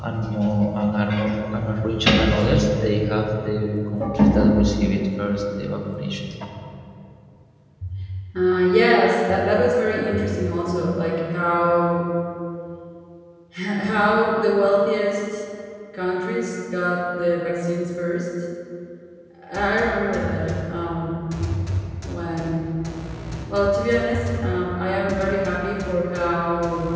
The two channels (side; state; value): both; identical; correlation 1.00